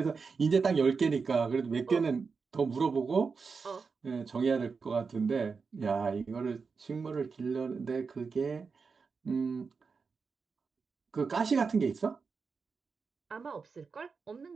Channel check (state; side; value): quieter; left; 5.1 dB